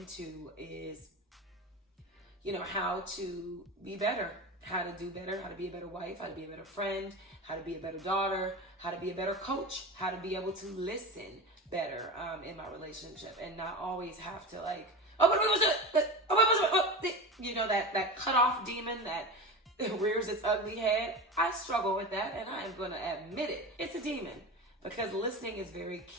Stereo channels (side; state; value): both; normal; correlation 0.26